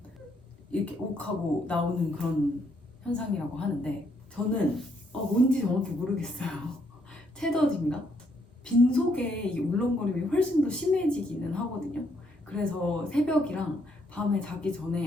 이렇게 욱하고 나오는 그런 현상이라고 하는데, 저는 뭔지 정확히 모르겠어요. 채더진가? 빈속에 이 울렁거림이 훨씬 더 심해지기는 하거든요. 그래서 새벽이랑 밤에 자기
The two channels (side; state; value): both; normal; correlation 0.72